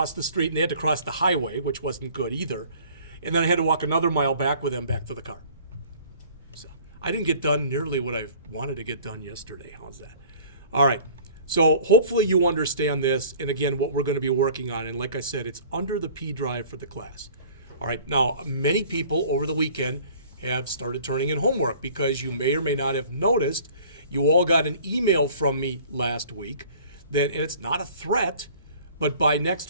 the street. And they had to cross the highway, which wasn't good either. And then I had to walk another mile back with them back to the car. So I didn't get done nearly what I wanted to get done yesterday. How's that? All right. So hopefully you understand this. And again, what we're going to be working on. And like I said, it's under the P drive for the class. All right. Now, many people over the weekend have started turning in homework because you may or may not have noticed you all got an email from me last week that, and it's not a threat, but by next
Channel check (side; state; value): both; inverted; correlation -0.49